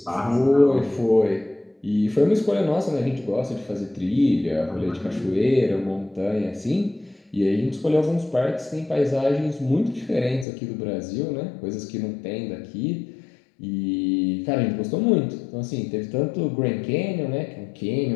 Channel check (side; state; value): right; drops out; at 10.5 s